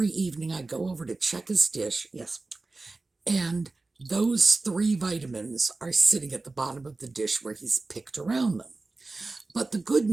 evening I go over to check his dish, yes, and those 3 vitamins are sitting at the bottom of the dish where he's picked around them. But the good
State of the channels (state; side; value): quieter; left; 3.4 dB